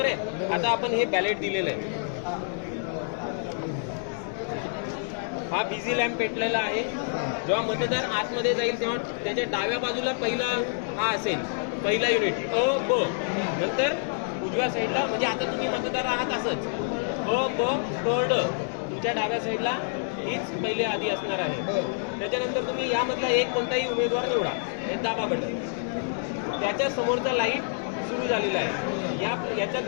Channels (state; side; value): silent; right; digital silence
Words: आहे. आता आपण हे बॅलेट दिलेलं आहे. हा बिझी लॅम्प पेटलेला आहे. जेव्हा मतदार आतमध्ये जाईल तेव्हा त्याच्या डाव्या बाजूला पहिला हा असेल, पहिला युनिट अ ब. नंतर उजव्या साईडला, म्हणजे आता तुम्ही मतदार आहात असंच अ ब क ड. तुमच्या डाव्या साईडला हीच पहिले आधी असणार आहे. त्याच्यानंतर तुम्ही यामधला एक कोणताही उमेदवार निवडा, हे दाबा बटन. त्याच्या समोरचा लाईट सुरू झालेला आहे.